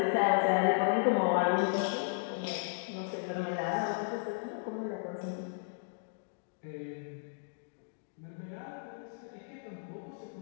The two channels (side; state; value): right; silent; digital silence